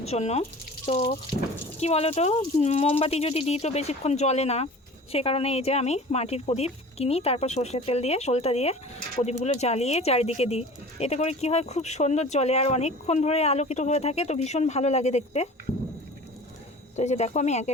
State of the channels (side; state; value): both; normal; correlation 0.40